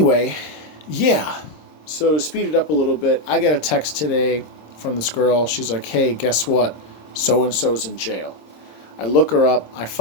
yeah. So to speed it up a little bit, I got a text today from this girl. She's like, "Hey, guess what? So and so's in jail." I look her up. I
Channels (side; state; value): right; late; 26 ms